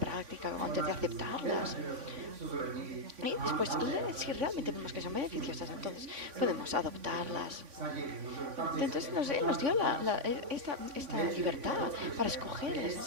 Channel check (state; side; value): late; left; 3.5 ms